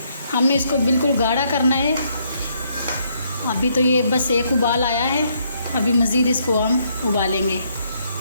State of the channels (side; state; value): both; inverted; correlation -0.72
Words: हमने इसको बिल्कुल गाढ़ा करना है। अभी तो ये बस 1 उबाल आया है, अभी मज़ीद इसको हम उबालेंगे।